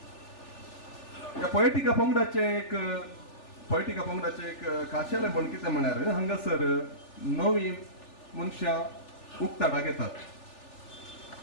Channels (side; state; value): right; late; 3.4 ms